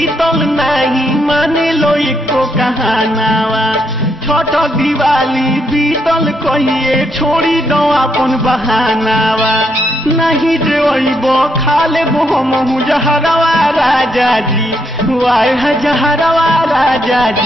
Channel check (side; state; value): both; normal; correlation 0.77